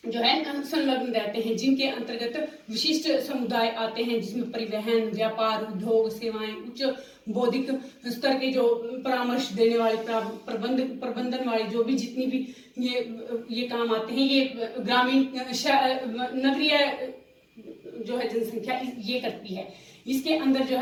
जो है संलग्न रहते हैं, जिनके अंतर्गत विशिष्ट समुदाय आते हैं, जिसमें परिवहन, व्यापार, उद्योग, सेवाएं, उच्च बौद्धिक स्तर के जो परामर्श देने वाले, प्रबंधन वाले जो भी जितनी भी ये काम आते हैं, ये ग्रामीण नगरीय जो है जनसंख्या ये करती है। इसके अंदर जो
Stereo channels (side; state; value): both; identical; correlation 1.00